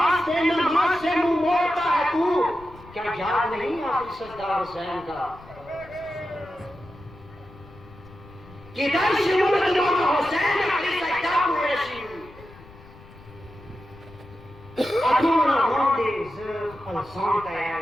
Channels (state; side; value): noise; left; rumble, 21 dB below the sound